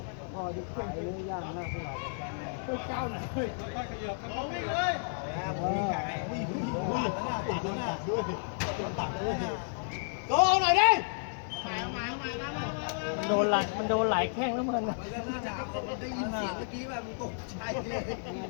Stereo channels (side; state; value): right; silent; digital silence